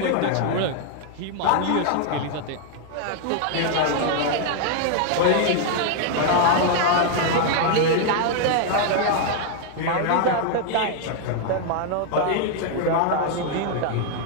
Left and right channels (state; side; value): different; both; correlation 0.00